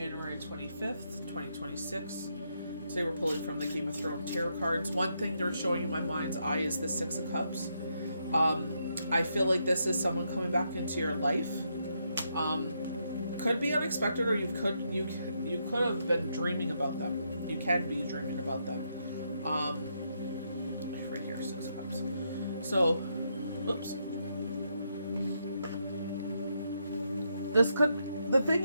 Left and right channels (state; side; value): inverted; both; correlation -0.79